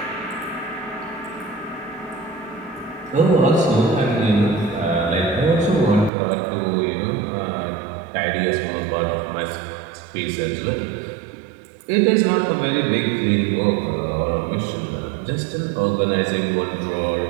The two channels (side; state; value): left; drops out; at 6.1 s